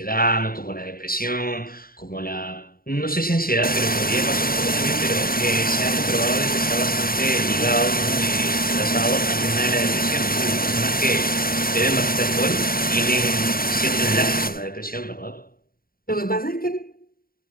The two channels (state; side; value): late; right; 0.43 ms